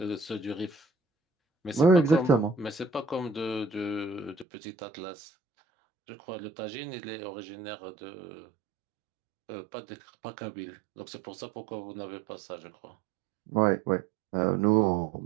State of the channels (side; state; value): left; drops out; at 4.5 s